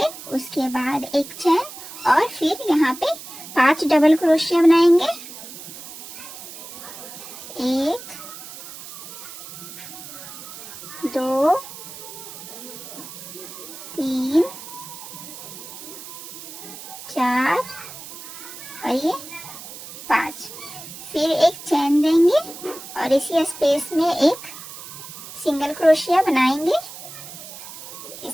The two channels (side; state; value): right; noise; hiss, 13 dB below the sound